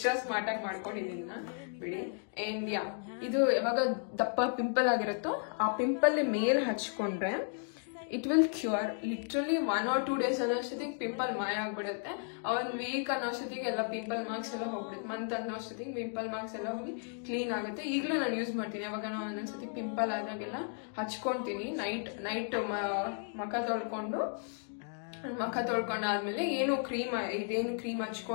ಸ್ಮಾರ್ಟ್ ಆಗಿ ಮಾಡ್ಕೊಂಡಿದ್ದೀನಿ ಬಿಡಿ. ಅಂಡ್ ಯಾ, ಇದು ಯಾವಾಗ ದಪ್ಪ ಪಿಂಪಲ್ ಆಗಿರುತ್ತೋ ಆ ಪಿಂಪಲ್ ಮೇಲೆ ಹಚ್ಕೊಂಡ್ರೆ it will cure. Literally 1 or 2 days ಅನ್ನೋಷ್ಟೊತ್ತಿಗೆ ಪಿಂಪಲ್ ಮಾಯ ಆಗ್ಬಿಡುತ್ತೆ. 1 week ಅನ್ನೋಷ್ಟೊತ್ತಿಗೆ ಎಲ್ಲ ಪಿಂಪಲ್ ಮಾರ್ಕ್ಸ್ ಎಲ್ಲ ಹೋಗ್ಬಿಡುತ್ತೆ. ಮಂತ್ ಅನ್ನೋಷ್ಟೊತ್ತಿಗೆ ಪಿಂಪಲ್ ಮಾರ್ಕ್ಸ್ ಎಲ್ಲ ಹೋಗಿ ಕ್ಲೀನ್ ಆಗುತ್ತೆ. ಈಗಲೂ ನಾನು ಯೂಸ್ ಮಾಡ್ತೀನಿ. ಯಾವಾಗ ನಾವು ಒಂದೊಂದ್ಸತಿ ಪಿಂಪಲ್ ಆದಾಗೆಲ್ಲ ಹಚ್ಕೊಂತೀನಿ. ನೈಟ್ ಮುಖ ತೊಳ್ಕೊಂಡಾದ್ಮೇಲೆ ಇದೇನು ಕ್ರೀಮ್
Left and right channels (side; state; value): right; silent; 55 dB below the other